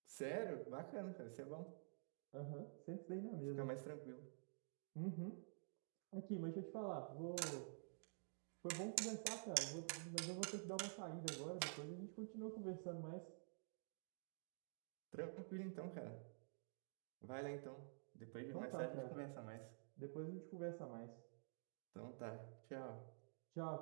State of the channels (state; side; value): silent; left; digital silence